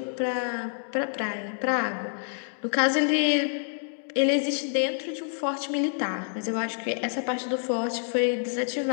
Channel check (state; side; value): silent; right; 60 dB below the other